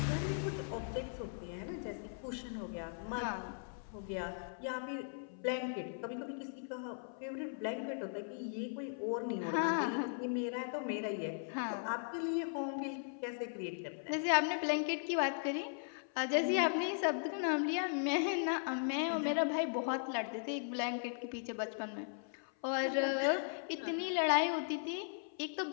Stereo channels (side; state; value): right; silent; 52 dB below the other